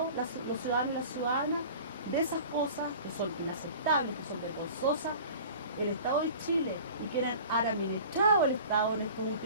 los ciudadanos y las ciudadanas. De esas cosas que son inaceptables, que son vergonzosas, el Estado de Chile y quienes han administrado el Estado en estos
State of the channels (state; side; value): inverted; both; correlation -0.42